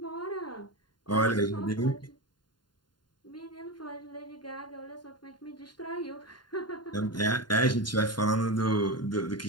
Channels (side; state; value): right; late; 0.71 ms